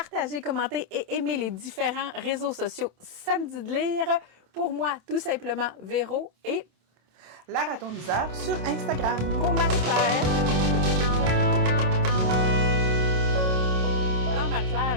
commenter et aimer les différents réseaux sociaux Samedi de lire. Pour moi, tout simplement, Véro et la ratoniseur sur Instagram. Pour Marie-Claire. Alors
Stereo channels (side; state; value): left; late; 27 ms